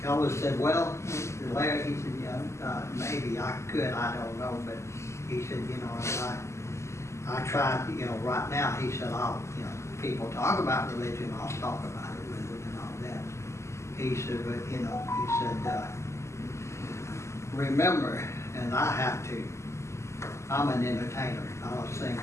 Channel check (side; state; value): right; late; 0.13 ms